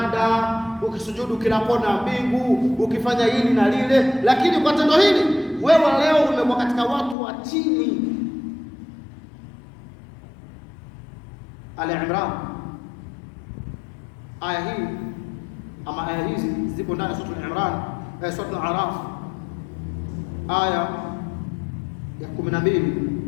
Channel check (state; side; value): drops out; right; at 7.2 s